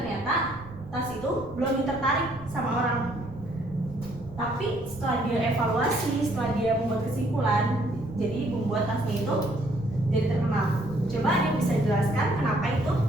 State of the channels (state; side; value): noise; right; rumble, 17 dB below the sound